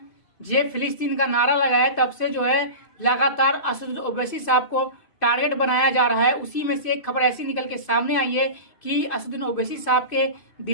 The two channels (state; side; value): late; right; 2.6 ms